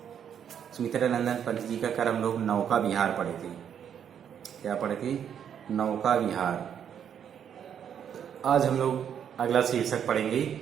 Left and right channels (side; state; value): left; quieter; 8.6 dB